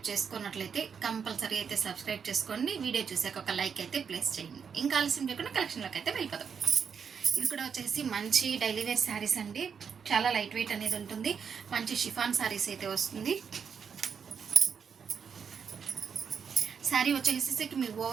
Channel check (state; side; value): quieter; left; 6.7 dB